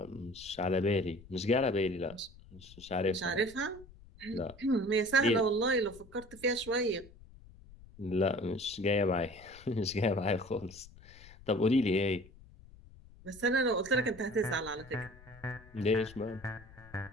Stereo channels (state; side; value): noise; left; rumble, 21 dB below the sound